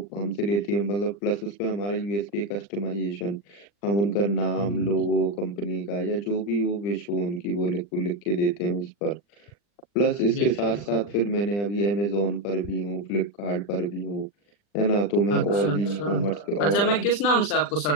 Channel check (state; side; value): late; right; 40 ms